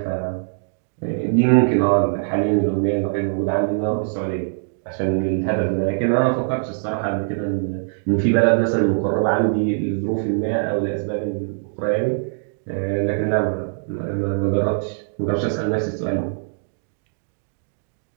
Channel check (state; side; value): silent; left; digital silence